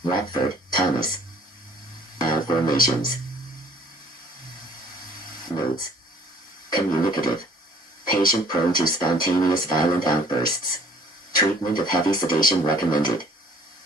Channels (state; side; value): normal; both; correlation 0.55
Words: Watford, Thomas. Formations. Notes. Communicative. Patient prone to spontaneous violent outbursts. Treatment of heavy sedation recommended.